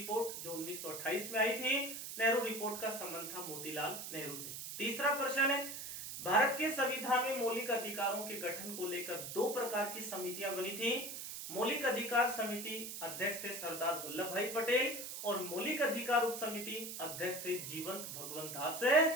जो 1928 में आई थी। नेहरू रिपोर्ट का संबंध था मोतीलाल नेहरू से। तीसरा प्रश्न है, भारत के संविधान में मौलिक अधिकारों के गठन को लेकर 2 प्रकार की समितियां बनी थी। मौलिक अधिकार समिति अध्यक्ष थे सरदार वल्लभ भाई पटेल और मौलिक अधिकार उप समिति अध्यक्ष थे जीवंत भगवंत दास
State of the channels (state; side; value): noise; right; hiss, 7 dB below the sound